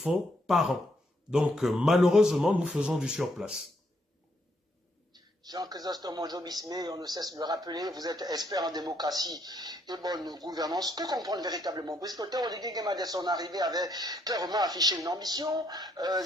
par an. Donc malheureusement, nous faisons du surplace. Jean-Chrysostome Monjo-Bismé, on ne cesse de le rappeler, vous êtes expert en démocratie et bonne gouvernance. Que comprendre véritablement? Puisque le Théodore Guéguéma, dès son arrivée, avait clairement affiché une ambition,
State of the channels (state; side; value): normal; both; correlation 0.73